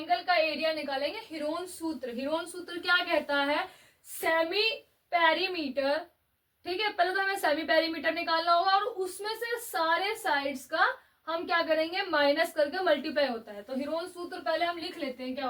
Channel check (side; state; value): both; identical; correlation 1.00